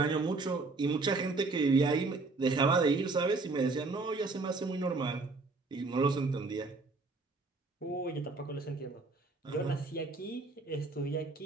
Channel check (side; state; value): left; quieter; 3.7 dB